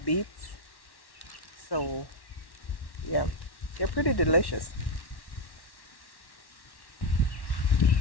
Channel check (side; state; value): right; late; 1.1 ms